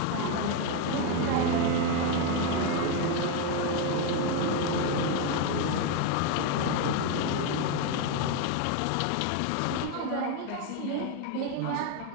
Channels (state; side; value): different; both; correlation 0.01